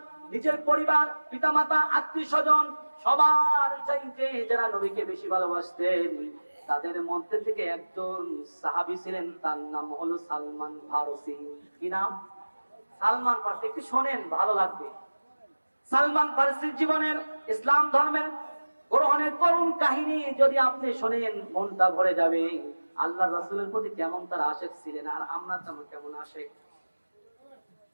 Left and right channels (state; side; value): inverted; both; correlation -1.00